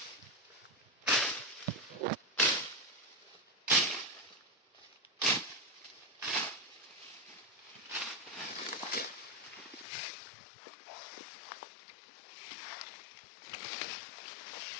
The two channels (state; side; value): drops out; right; at 9.9 s